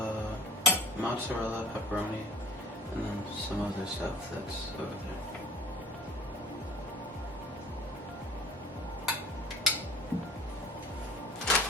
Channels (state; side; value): normal; both; correlation 0.46